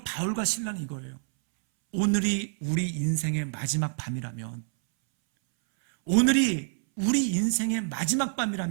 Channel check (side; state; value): left; silent; 60 dB below the other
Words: 바울과 실라는 이거예요. 오늘이 우리 인생의 마지막 밤이라면, 오늘이 우리 인생의 마지막